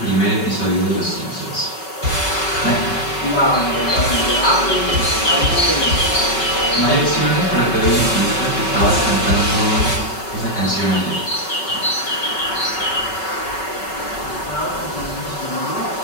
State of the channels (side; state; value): right; late; 5.3 ms